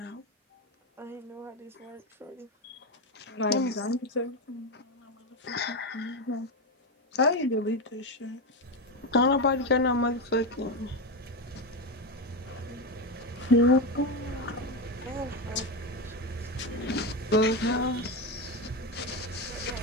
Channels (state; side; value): normal; both; correlation 0.13